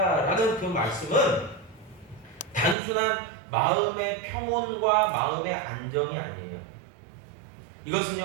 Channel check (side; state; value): left; drops out; at 2.8 s